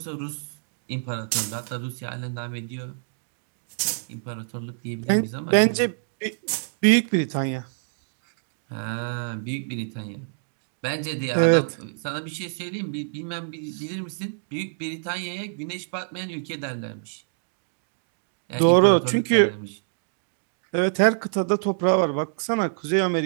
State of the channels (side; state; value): left; silent; digital silence